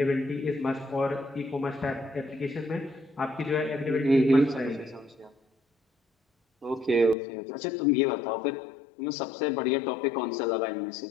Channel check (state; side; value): drops out; right; at 7.2 s